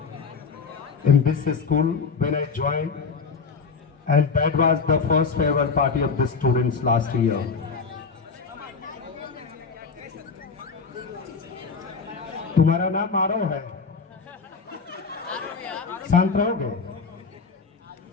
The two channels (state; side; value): quieter; right; 5.1 dB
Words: in this school, when I joined, and that was the first farewell party of the students last year. तुम्हारा नाम आरव है, शांत रहोगे?